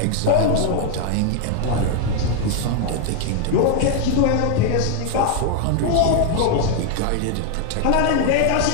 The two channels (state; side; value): different; both; correlation 0.00